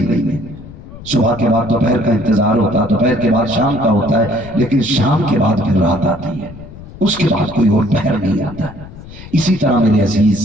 نہیں ہے. صبح کے بعد دوپہر کا انتظار ہوتا ہے، دوپہر کے بعد شام کا ہوتا ہے، لیکن شام کے بعد پھر رات آتی ہے، اس کے بعد کوئی اور پہر نہیں آتا ہے. اسی طرح میرے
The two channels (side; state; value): left; noise; rumble, 16 dB below the sound